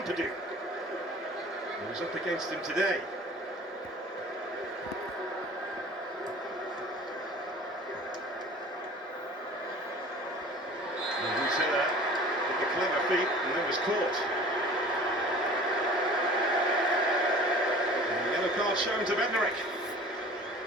who was up against him today. Clever feet, and then was caught. And the yellow card shown to Bednarek.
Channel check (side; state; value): both; normal; correlation 0.44